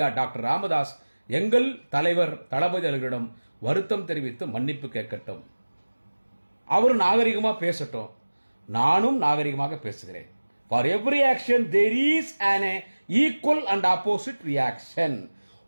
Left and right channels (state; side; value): inverted; both; correlation -1.00